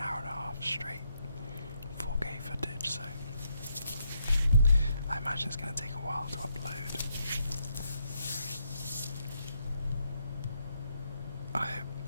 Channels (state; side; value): inverted; both; correlation -0.77